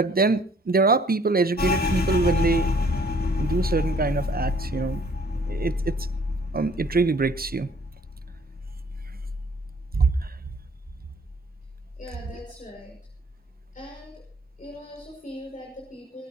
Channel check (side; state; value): both; normal; correlation 0.58